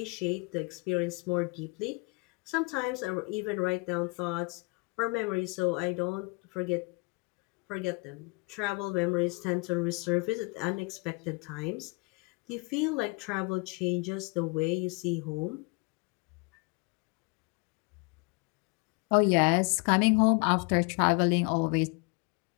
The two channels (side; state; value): right; quieter; 30.7 dB